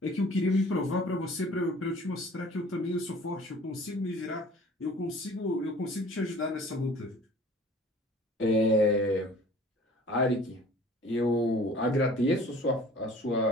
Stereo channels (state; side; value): normal; both; correlation 0.49